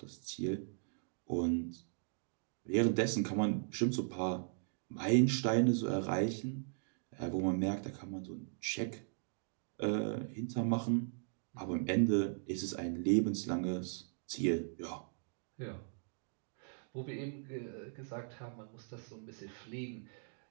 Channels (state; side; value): silent; left; digital silence